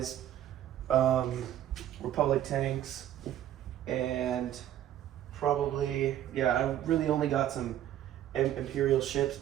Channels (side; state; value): left; quieter; 11.9 dB